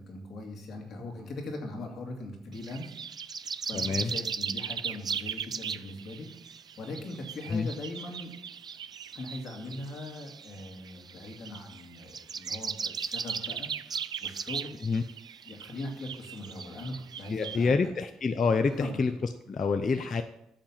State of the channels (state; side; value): normal; both; correlation 0.73